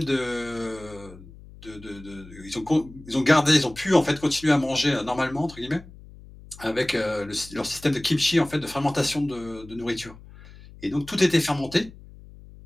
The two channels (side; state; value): left; noise; hum, 19 dB below the sound